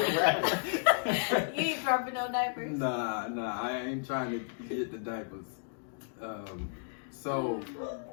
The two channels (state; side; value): silent; right; digital silence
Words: ain't dropping no diapers? Nah, I ain't trying to get the diapers.